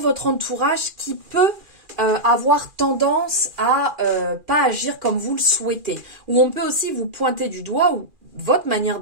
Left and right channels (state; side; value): late; left; 2.4 ms